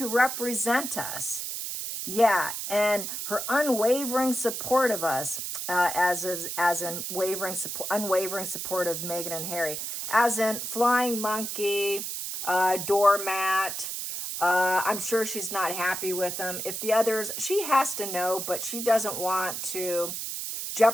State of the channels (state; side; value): noise; right; hiss, 5 dB below the sound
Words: represent us. Yeah, and her unwavering support of us, as in unwavering support of Meghan and Harry, as in flying monkey, doormat. I'm sure she's not happy with them. If the others, she has to know, but she doesn't want to